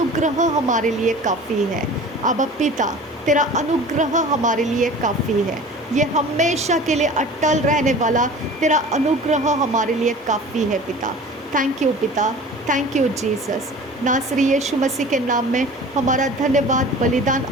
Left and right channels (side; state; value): both; normal; correlation 0.41